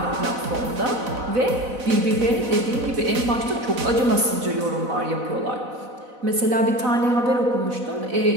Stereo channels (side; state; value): left; late; 4.0 ms